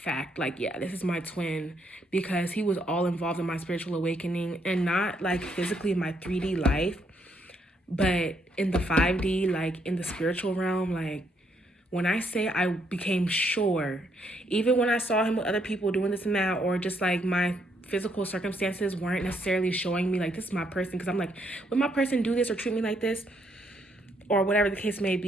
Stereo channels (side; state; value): both; normal; correlation 0.73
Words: yeah, this is my twin, because he was all involved in my spiritual awakening, and not physically in my 3D life, but in the 5D, in the spiritual realm. When I say I became sure, even when I saw him with other people doing this and that, or just my physical circumstances weren't necessarily showing me this is my person, because I'm would my person do this or treat me like this, or whatever the case may